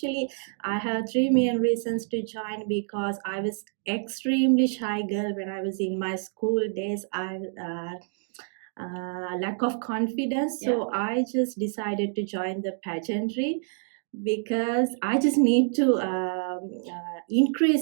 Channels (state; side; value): silent; left; 60 dB below the other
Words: I have 3 main reasons to join because I was extremely shy girl when I was in my school days. I lack of confidence, so I just decided to join the pageantry because I just need to